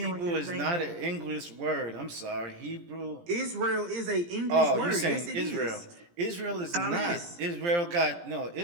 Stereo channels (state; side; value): late; left; 17 ms